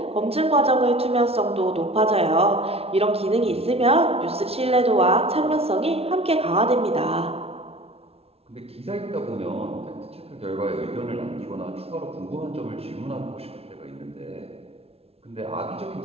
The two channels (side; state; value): left; late; 0.29 ms